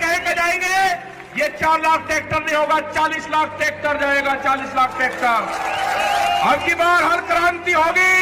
कह कर जाएंगे ये 4 लाख ट्रैक्टर नहीं होगा, 40 लाख ट्रैक्टर जाएगा, 40 लाख ट्रैक्टर। अब की बार हर क्रांति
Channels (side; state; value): both; identical; correlation 1.00